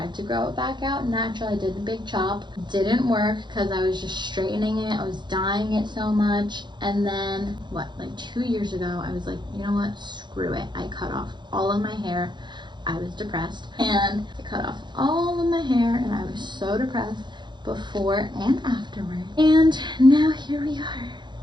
to grow it back out natural. I did a big chop, didn't work because I was just straightening it, I was dyeing it so much. And then what, like 2 years ago, I was like, you know what, screw it. I cut off all of my hair. I was depressed and I cut off all of my hair and I was so depressed before and afterward. And now here we are,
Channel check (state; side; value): late; left; 0.22 ms